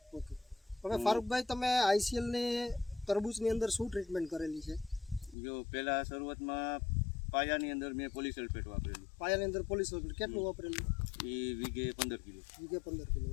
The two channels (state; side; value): drops out; right; at 5.4 s